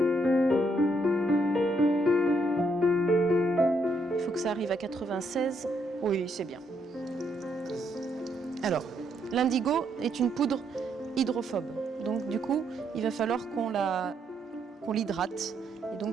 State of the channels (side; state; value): both; normal; correlation 0.74